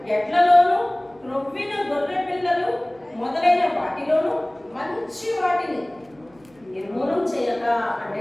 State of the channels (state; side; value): noise; right; hum, 29 dB below the sound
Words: ఎడ్లలోను క్రొవ్విన గొర్రె పిల్లలు మొదలైన వాటిలోను మంచి వాటిని నిర్మూలన చేయక, అంటే